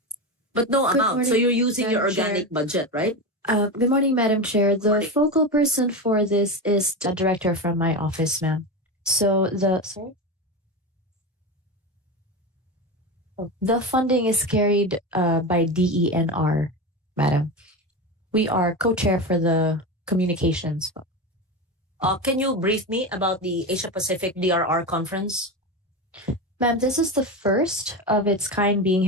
But no Good amount. So morning, you're using your Madam Chair. organic budget, right? Good morning, Madam Chair. The Morning. focal person for this is the director from my office, ma'am. So the funding is carried by DENR, madam. We are co-chair for the communications. Can you brief me about the Asia Pacific DRR conference? Ma'am, this is the first of its kind being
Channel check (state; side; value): normal; both; correlation 0.20